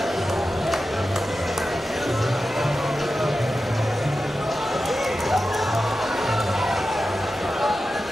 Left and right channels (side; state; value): both; normal; correlation 0.92